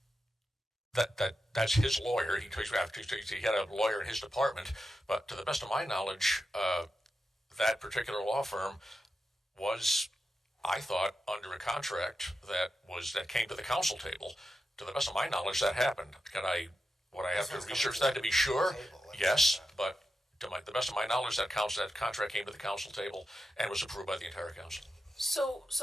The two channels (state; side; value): normal; both; correlation 0.89